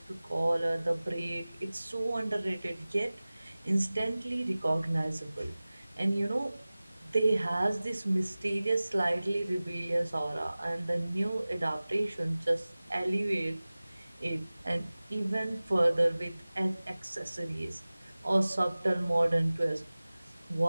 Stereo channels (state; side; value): inverted; both; correlation -0.98